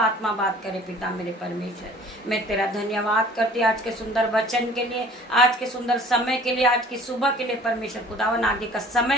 बात करे पिता मेरे परमेश्वर। मैं तेरा धन्यवाद करती आज के सुंदर वचन के लिए, आज के सुंदर समय के लिए, आज की सुबह के लिए परमेश्वर। खुदावन आगे का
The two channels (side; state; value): both; normal; correlation 0.50